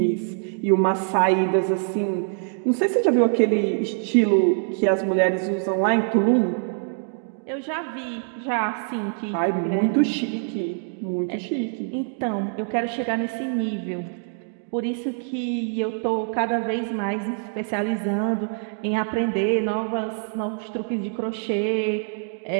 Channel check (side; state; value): left; silent; digital silence